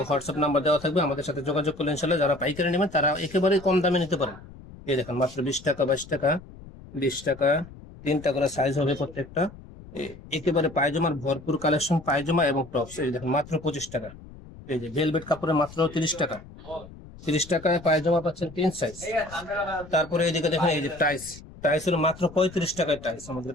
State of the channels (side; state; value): left; noise; rumble, 18 dB below the sound